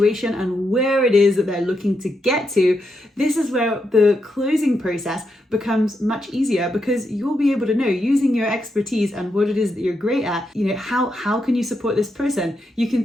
and where it is that they're looking to get to, this is where the closing process becomes much easier, because you'll be able to know using your expertise and what it is that you're great at, how can you support this person? You can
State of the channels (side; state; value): both; normal; correlation 0.83